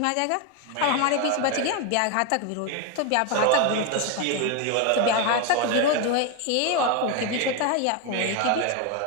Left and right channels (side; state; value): both; different; correlation 0.02